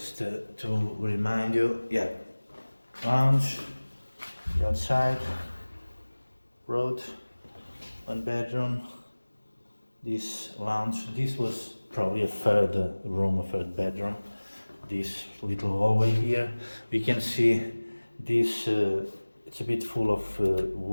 to remind you, yeah, lounge, the outside, road, one bedroom. This lounge, this was probably a third room, a third bedroom. This little hallway here, we can see this, it's a bit full of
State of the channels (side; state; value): both; inverted; correlation -1.00